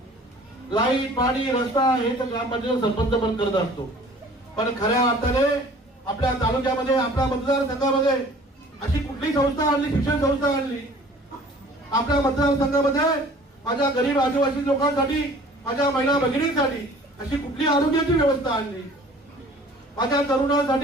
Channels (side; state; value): both; normal; correlation 0.49